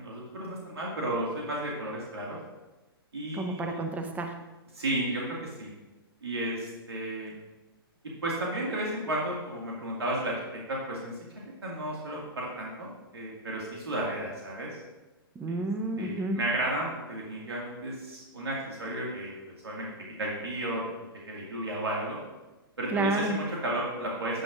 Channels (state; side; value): normal; both; correlation 0.01